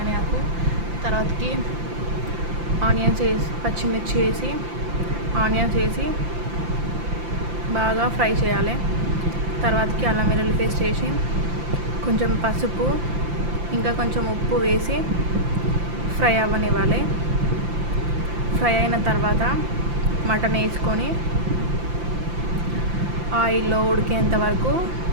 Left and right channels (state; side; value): late; left; 5.8 ms